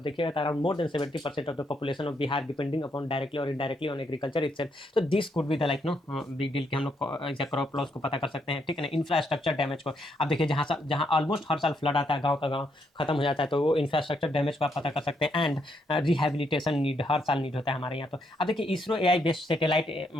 देखिएगा around more than 70% of the population of Bihar depending upon directly और इनडायरेक्टली ऑन एग्रीकल्चर इटसेल्फ, तो this could be the like know big deal कि हम लोग क्रॉप लॉस को पता कर सकते हैं, ठीक है ना। इंफ्रास्ट्रक्चर डैमेज को अब देखिए, जहाँ ऑलमोस्ट हर साल फ्लड आता है, गाँव का गाँव खत्म हो जाता है, तो वो इंफ्रास्ट्रक्चर डैमेज को आप पता कर सकते हैं। एंड रिहेबिलिटेशन नीड हर साल नीड होता है हमारे यहाँ। तो अब देखिए इसरो एआई बेस्ड सैटेलाइट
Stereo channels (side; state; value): both; normal; correlation 0.76